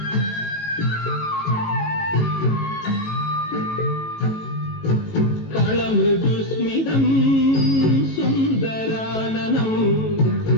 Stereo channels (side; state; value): right; late; 18 ms